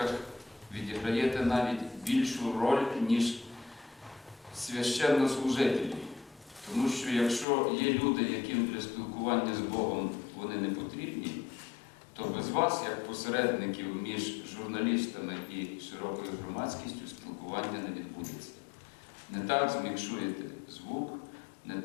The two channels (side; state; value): right; drops out; at 7.5 s